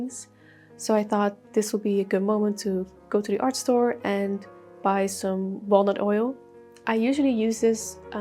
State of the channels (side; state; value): both; identical; correlation 1.00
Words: So I thought this would be a good moment to go to the art store and buy some walnut oil. I usually use this